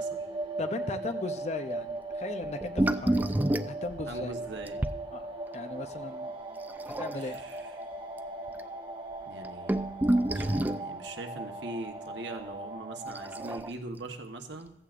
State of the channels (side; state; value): both; normal; correlation 0.75